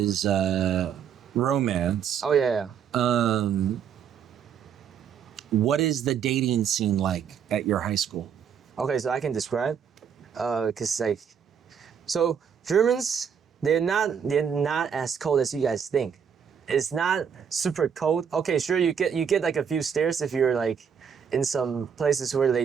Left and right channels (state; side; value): quieter; left; 7.5 dB